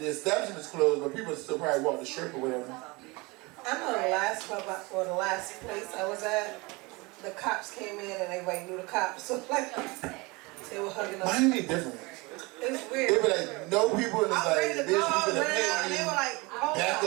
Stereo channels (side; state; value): left; quieter; 25.4 dB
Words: establishment's closed, but people still probably walk the strip or whatever. I know the last club or the last place I was at, the cops came in and everybody knew the cops. So like, they were hugging us. Miami different. It's weird. They were like, no people, and it's I was ready like, to go, bitch, we finna and pay they you. were like, hold Back